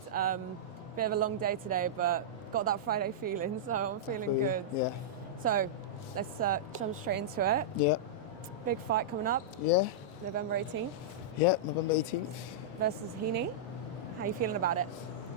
Bit of a long day today, but got that Friday feeling, so I'm feeling good. Yeah. So let's jump straight into it. Yeah. Big fight coming up. Yeah. November 18th. Yeah, November 18th. Versus Heaney. How you feeling about it?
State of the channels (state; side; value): normal; both; correlation -0.12